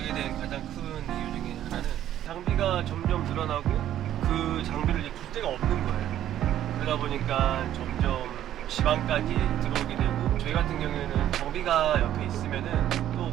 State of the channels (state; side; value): quieter; left; 11.7 dB